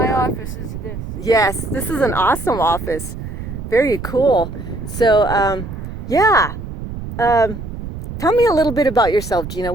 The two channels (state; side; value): noise; right; rumble, 9 dB below the sound